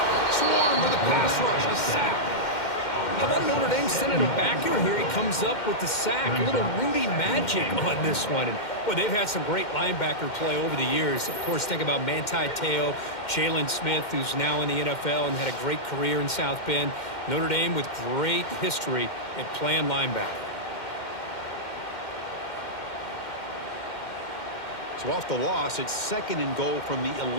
Swarm with a pass rush. A sack. How about Notre Dame sending a backer here? He comes up with the sack. A little Rudy magic on this one. And boy, they've had some great linebacker play over the years. Of course, think about Manti Te'o, Jalen Smith, who's now in the NFL and had a great career in South Bend. Notre Dame with great history at playing linebacker. So off the loss, it's 2nd and goal from the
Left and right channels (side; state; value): right; late; 2.1 ms